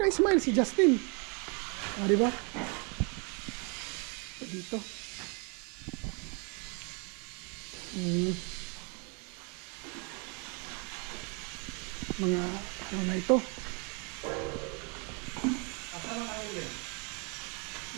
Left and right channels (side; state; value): left; quieter; 34.6 dB